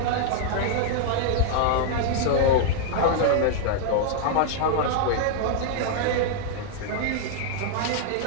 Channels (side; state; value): both; different; correlation -0.01